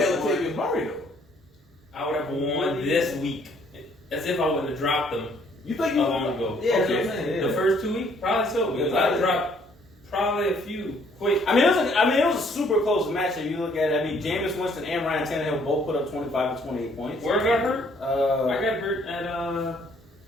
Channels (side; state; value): both; normal; correlation 0.64